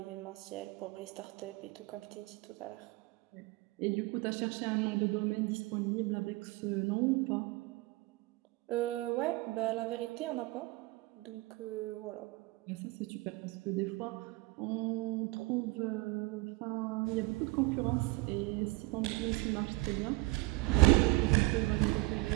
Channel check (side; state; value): left; quieter; 22.6 dB